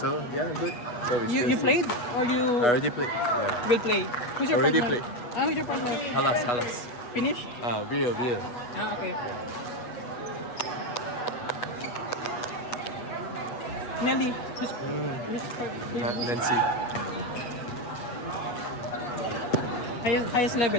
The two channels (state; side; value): late; right; 8.2 ms